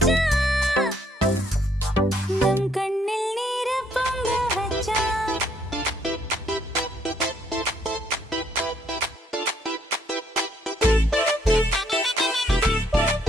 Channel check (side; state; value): both; normal; correlation 0.69